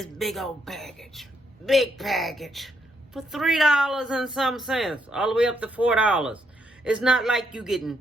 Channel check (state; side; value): normal; both; correlation 0.76